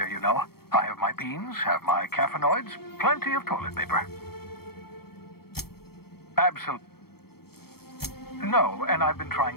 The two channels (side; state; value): right; late; 0.95 ms